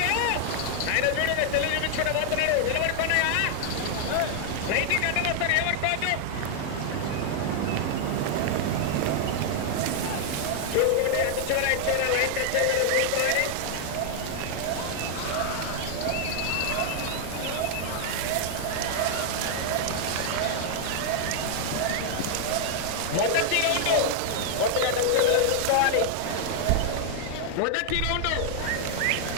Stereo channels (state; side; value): different; both; correlation 0.00